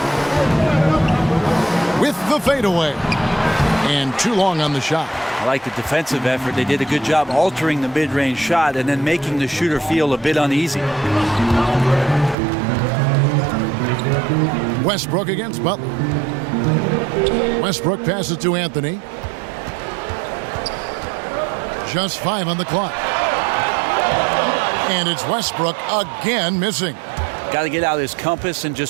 With the fadeaway. And too long on the shot. I like the defensive effort. They did a good job altering the mid-range shot and then making the shooter feel a bit uneasy. Westbrook against Butler. Westbrook passes to Anthony. Just 5 on the clock. And it's Westbrook again missing. Got to get out his compass and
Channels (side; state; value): left; drops out; at 12.4 s